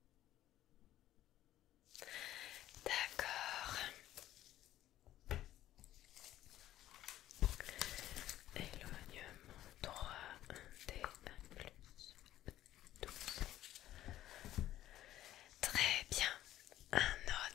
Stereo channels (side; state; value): right; quieter; 13.5 dB